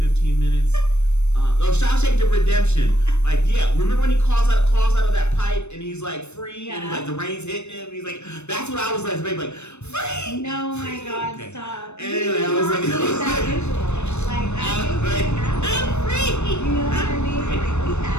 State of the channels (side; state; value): right; late; 0.81 ms